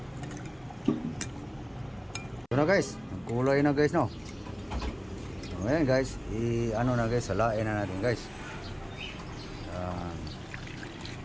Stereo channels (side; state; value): both; identical; correlation 1.00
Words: Ito na guys, nagkulay na guys, no? So ayan guys, ano na guys, salain na natin guys.